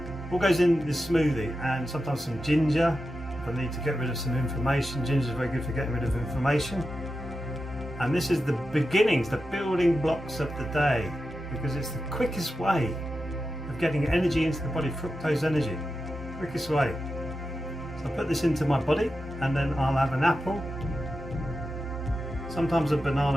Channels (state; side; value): normal; both; correlation 0.90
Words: all goes in this smoothie, and sometimes some ginger if I need to get rid of some inflammation. Ginger is very good for getting rid of inflammation. And this is the beginnings, the building blocks of the day, because it's the quickest way of getting energy into the body, fructose energy, quickest way. So I put this into my body and then I'll have an apple, sometimes a